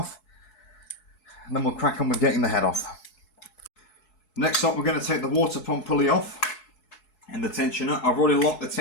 and then we'll crack on with getting the head off. Next up, we're going to take the water pump pulley off and the tensioner. I've already locked the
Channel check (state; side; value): late; right; 4.7 ms